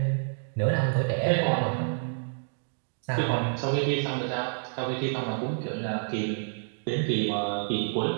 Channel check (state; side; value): silent; left; digital silence